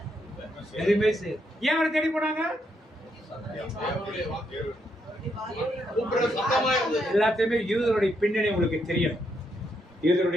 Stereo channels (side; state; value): both; normal; correlation 0.78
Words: எதுவுமே செய்ய. ஏன் அவரை தேடி போனாங்க? எல்லாத்தையுமே யூதருடைய பின்னணி உங்களுக்கு தெரியும்.